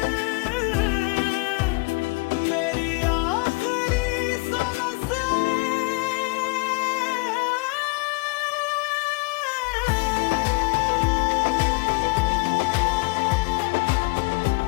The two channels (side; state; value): right; quieter; 27.0 dB